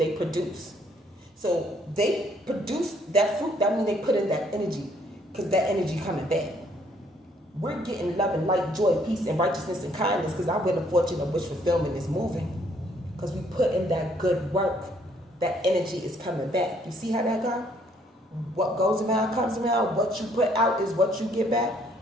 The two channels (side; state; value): both; normal; correlation 0.66